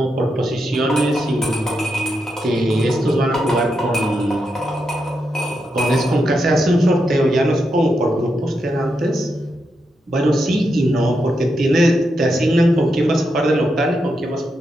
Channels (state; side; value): normal; both; correlation 0.84